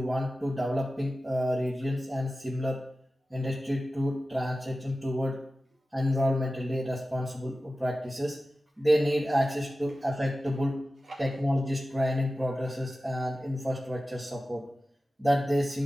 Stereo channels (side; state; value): both; normal; correlation 0.94